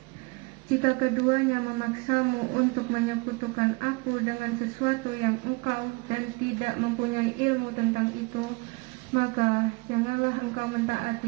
Jika keduanya memaksamu untuk menyekutukan aku dengan sesuatu yang engkau dan tidak mempunyai ilmu tentang itu, maka janganlah engkau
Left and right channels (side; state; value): left; quieter; 27.9 dB